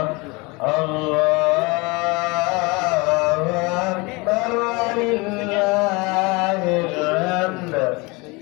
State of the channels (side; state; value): right; quieter; 26.3 dB